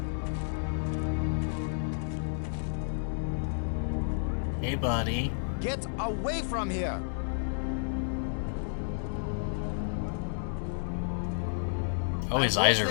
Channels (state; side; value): silent; right; digital silence